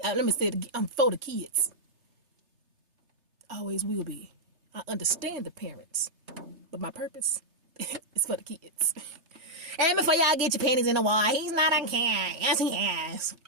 Let me say it again. I'm for the kids. Always will be. I understand the parents, but my purpose is for the kids. And before y'all get your panties in the wall, he's not on can. Yes, he has.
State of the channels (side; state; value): left; late; 3.3 ms